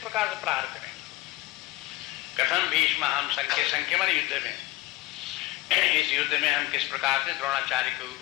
से प्रहार करें? कथम भीष्म हम संख्यमन युद्ध में, इस युद्ध में हम किस प्रकार से द्रोणाचार्य के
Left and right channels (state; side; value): quieter; right; 18.4 dB